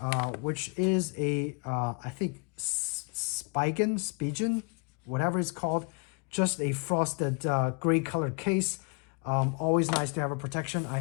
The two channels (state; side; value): quieter; right; 35.3 dB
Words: which is a, I think, Spigen, whatever it's called, just a frosted gray colored case. Always nice to have a protection. I